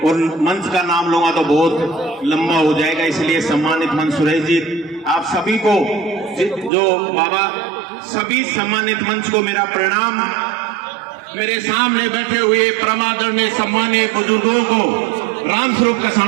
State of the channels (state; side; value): drops out; left; at 6.7 s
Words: और मंच का नाम लूंगा तो बहुत लंबा हो जाएगा, इसलिए सम्मानित मंच सुरेश जी, आप सभी को जो बाबा, सभी सम्मानित मंच को मेरा प्रणाम। मेरे सामने बैठे हुए परम आदरणीय सम्मानीय बुजुर्गों को रामस्वरूप